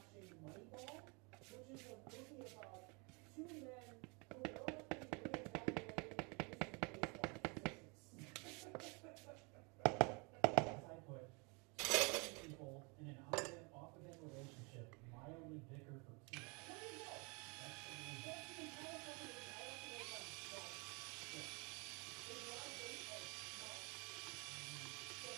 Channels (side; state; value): left; quieter; 31.2 dB